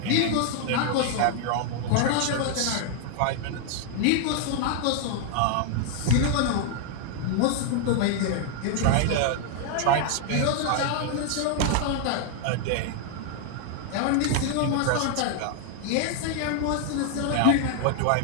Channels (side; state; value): both; different; correlation 0.00